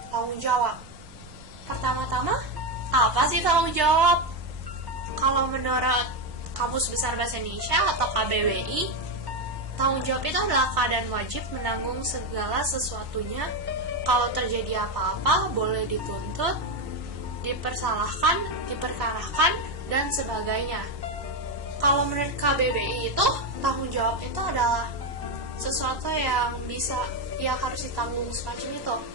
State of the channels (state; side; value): late; left; 1.1 ms